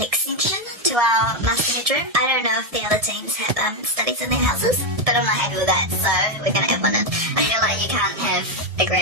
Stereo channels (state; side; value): late; left; 1.7 ms